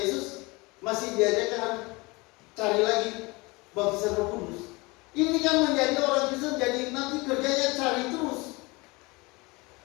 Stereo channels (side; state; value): right; quieter; 24.8 dB